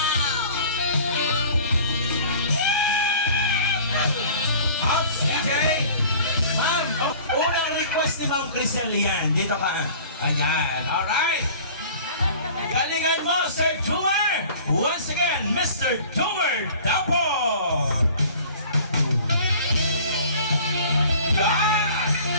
Ops, DJ. Ma'am, unang request ni Ma'am Crisel yan. Dito ka. Ayan, alright. Galingan mo, Sir Jumar! Once again, Mr. Jumar Dapo! Yan!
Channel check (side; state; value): both; inverted; correlation -0.46